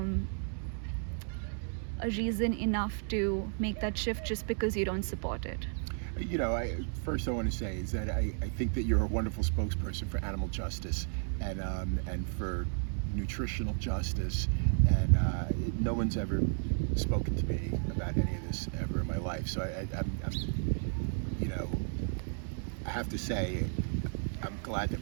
reason enough to make that shift just because you don't support it? First I want to say is that I think that you're a wonderful spokesperson for animal justice and for nutritional justice, and no one's ever spoken to me about any of this ever in my life. So I have to say I'm glad that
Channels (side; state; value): left; silent; 56 dB below the other